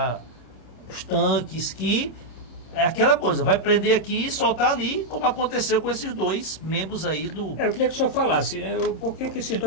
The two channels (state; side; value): late; right; 26 ms